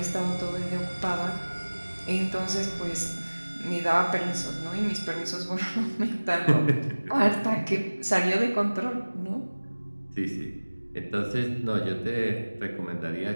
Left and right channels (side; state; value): both; inverted; correlation -1.00